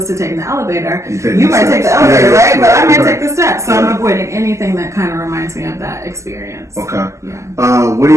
to taking the elevator, you might take the elevator, right? But I might take the steps. So I'm avoiding anything that kind of reminds me of that experience. Okay. Yeah. What are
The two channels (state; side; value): late; left; 0.14 ms